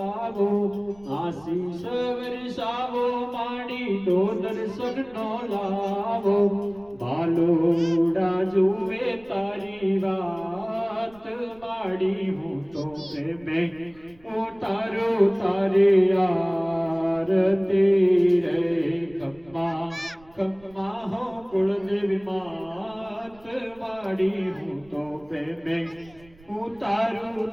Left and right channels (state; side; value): noise; right; rumble, 27 dB below the sound